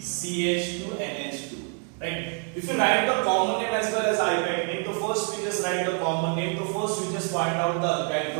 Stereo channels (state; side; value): quieter; left; 39.4 dB